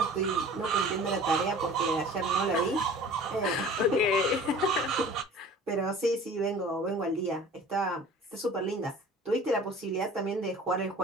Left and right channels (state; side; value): normal; both; correlation 0.44